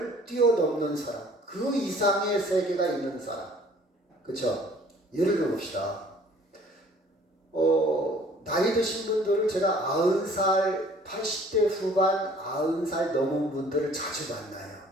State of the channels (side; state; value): both; normal; correlation 0.54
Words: 뛰어넘는 사람, 그 이상의 세계가 있는 사람. 그렇죠? 예를 들어봅시다. 나이 드신 분들을 제가 90살, 80대 후반, 90살 넘은 분들을 자주 만나요.